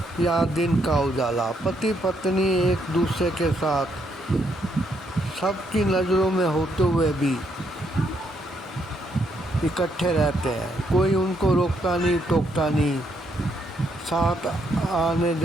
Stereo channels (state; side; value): normal; both; correlation 0.75